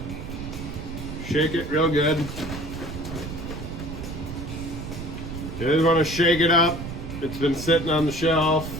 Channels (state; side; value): noise; right; rumble, 8 dB below the sound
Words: shake it real good. You just want to shake it up. It's been sitting on the shelf